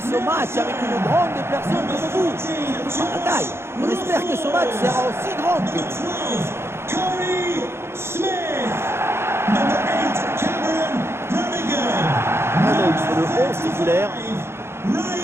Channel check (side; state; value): left; late; 0.12 ms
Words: match avec une grande personne comme vous. Par la taille, on espère que ce match sera aussi grand que vous. Corey Smith, number 8, Cameron Brannigan. Un œil sur le 11 titulaire.